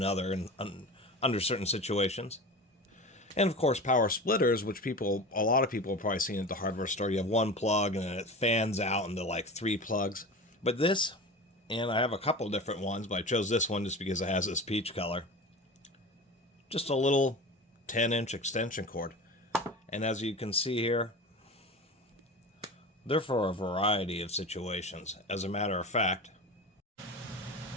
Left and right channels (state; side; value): normal; both; correlation 0.31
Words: and under certain situations. And of course, power splitters, which a lot of people have probably seen at the hardware store. You have one plug and then it fans out into like 3 plugs. But this, and I have a couple different ones, but I chose this one just because it has this peach color. Just a little 10-inch extension cord. And as you can see here, they're for a variety of situations. As a matter of fact,